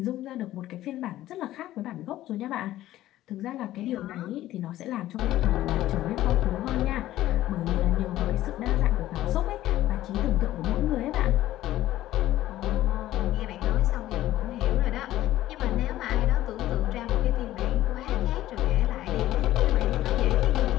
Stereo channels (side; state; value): right; quieter; 14.5 dB